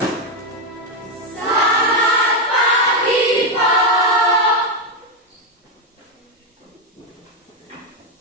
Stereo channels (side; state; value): both; normal; correlation 0.05